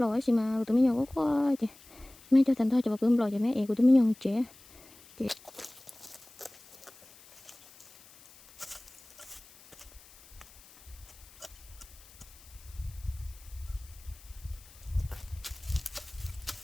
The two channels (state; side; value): noise; left; hiss, 23 dB below the sound